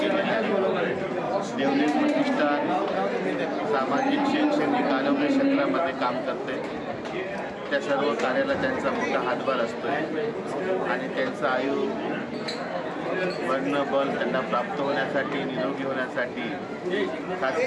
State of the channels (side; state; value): both; identical; correlation 1.00